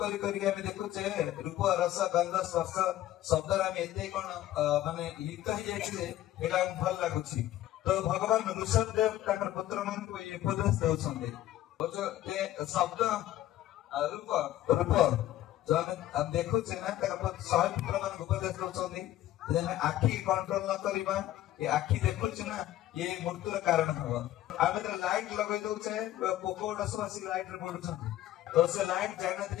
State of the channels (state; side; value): quieter; right; 13.7 dB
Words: करी आमे देखुचे रूप रस गंध स्पर्श शब्द आमे एते कोन माने लिप्त हो जायछि एला भल लागुछि तो भगवान ऋषभ देव ताकर पुत्र मन को ये उपदेश देउछन्ते शब्द रूप रूप जो हम देखु छे ना ताकर सही पुत्र मन को उपदेश देउछन्ते जेने आखी कंट्रोल न करिबा ये आखी देखु छे ना ये मृत्युर कारण हबो आबे तो लाइट लगै दउ छे पोको डसवासी लाइट रे पडुछन्ते तो से लाइट